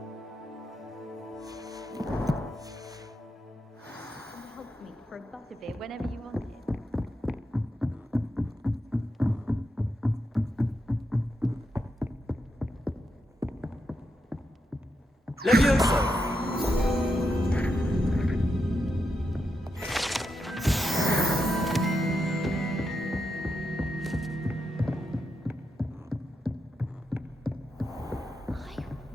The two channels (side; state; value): both; normal; correlation 0.85